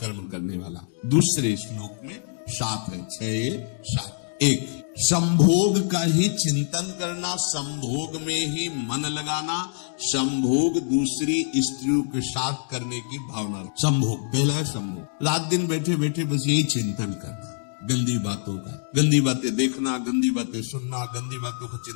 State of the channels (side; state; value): right; silent; digital silence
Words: करने वाला। दूसरे श्लोक में 7 है, 6 1 संभोग का ही चिंतन करना, संभोग में ही मन लगाना, संभोग दूसरी स्त्रियों के साथ करने की भावना। संभोग, पहला है संभोग, रात दिन बैठे बैठे बस यही चिंतन करना, गंदी बातों का, गंदी बातें देखना, गंदी बातें सुनना, गंदी बातों का